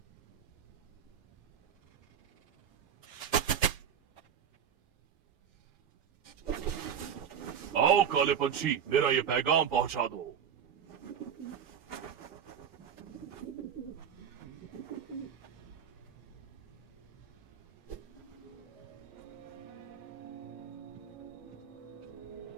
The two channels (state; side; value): quieter; left; 8.3 dB